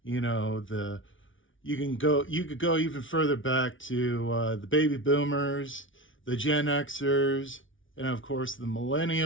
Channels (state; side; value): late; right; 0.57 ms